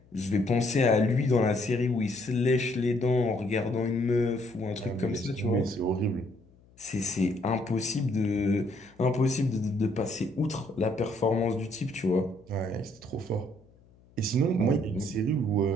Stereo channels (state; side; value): noise; left; hum, 29 dB below the sound